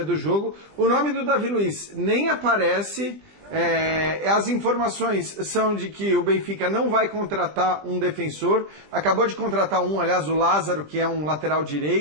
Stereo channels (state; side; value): late; left; 20 ms